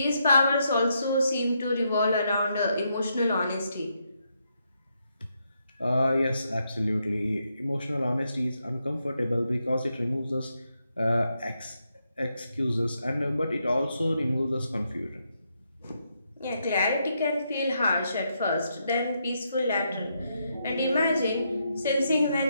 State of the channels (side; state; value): both; inverted; correlation -0.80